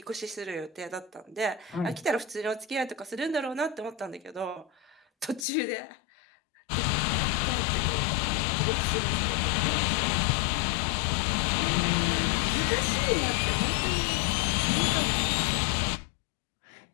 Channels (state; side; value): drops out; right; at 5.5 s